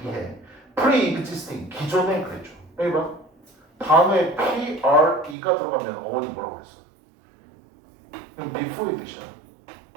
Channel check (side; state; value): left; drops out; at 5.4 s